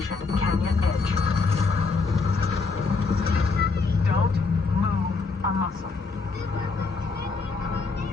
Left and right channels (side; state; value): right; quieter; 4.4 dB